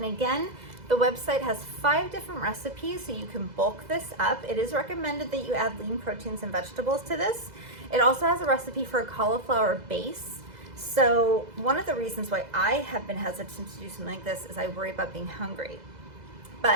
again, the website has 5 different recipes, so you can bulk this up. It is recommended that you add lean proteins and vegetables to this. It also has a recipe for a cauliflower base. So one of the reasons why I have been hesitant to do something like this is I worry about being hungry.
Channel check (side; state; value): left; late; 2.0 ms